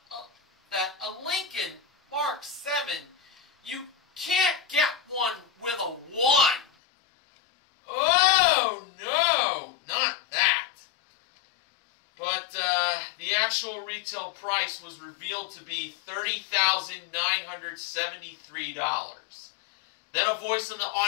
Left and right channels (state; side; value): drops out; right; at 6.7 s